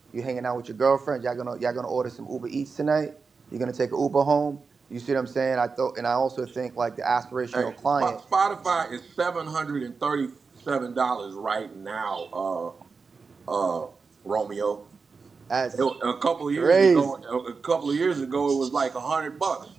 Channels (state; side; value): quieter; left; 4.8 dB